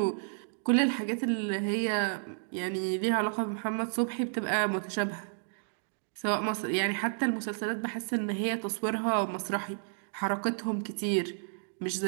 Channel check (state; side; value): silent; left; digital silence